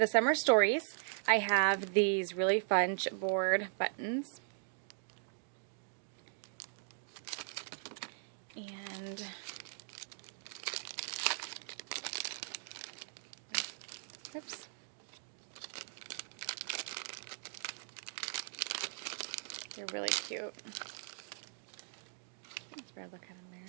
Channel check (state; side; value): silent; left; digital silence